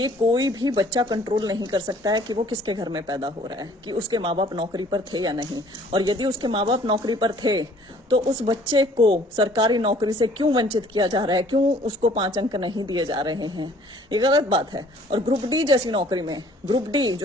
कोई भी बच्चा कंट्रोल नहीं कर सकता है कि वो किसके घर में पैदा हो रहा है, कि उसके माँ बाप नौकरी पर थे या नहीं, और यदि उसके माँ बाप नौकरी पर थे तो उस बच्चे को सरकारी नौकरी से क्यों वंचित किया जा रहा है, क्यों उसको 5 अंक नहीं दिए जा रहे हैं। ये गलत बात है। और ग्रुप डी जैसी नौकरी में, ग्रुप डी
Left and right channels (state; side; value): normal; both; correlation 0.56